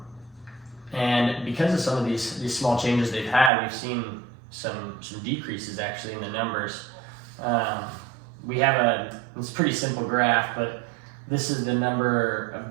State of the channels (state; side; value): drops out; left; at 3.5 s